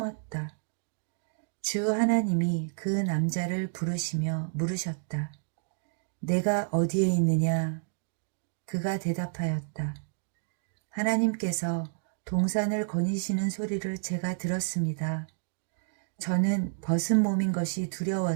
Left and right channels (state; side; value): silent; left; digital silence